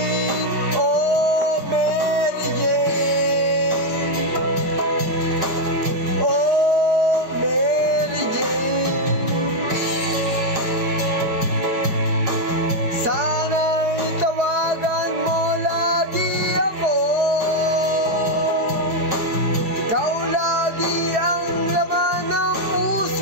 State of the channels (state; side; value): late; left; 4.7 ms